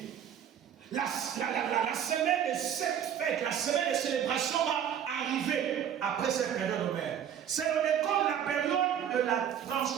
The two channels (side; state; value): left; quieter; 9.2 dB